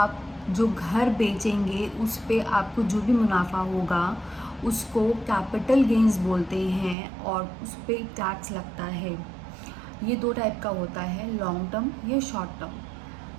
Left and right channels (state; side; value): drops out; left; at 7.0 s